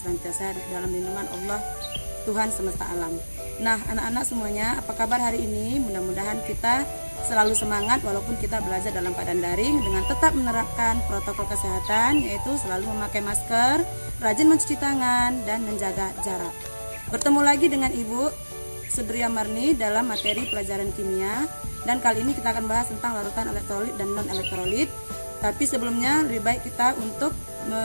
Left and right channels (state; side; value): inverted; both; correlation -1.00